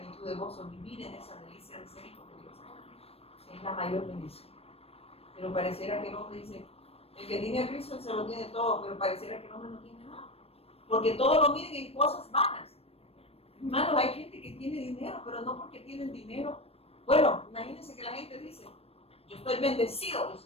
de gozo, vivir en esa delicia de ser hijo de Dios. Es la mayor bendición. Pero pareciera que el hombre dice, el que tiene a Cristo él se lo tiene todo, pero pareciera que el hombre no tiene nada. Porque todo lo miden en cosas vanas. Hermanos, hay gente que tiene dinero, pero no porque tienen dinero. Bueno, imagínense que la gente dice, yo estoy bendecido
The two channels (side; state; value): right; late; 0.28 ms